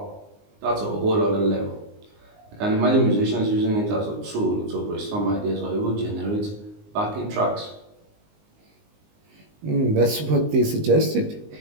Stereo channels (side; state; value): left; late; 19 ms